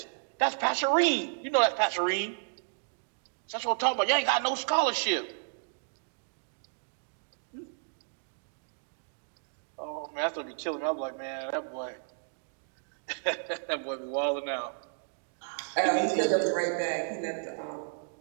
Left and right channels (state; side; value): silent; left; digital silence